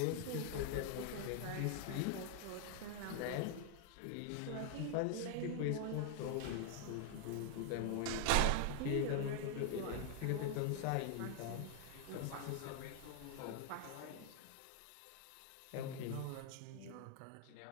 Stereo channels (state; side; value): different; both; correlation 0.00